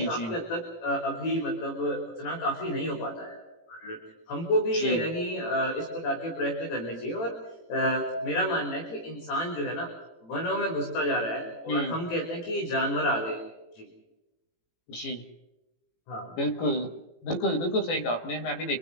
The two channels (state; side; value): late; right; 18 ms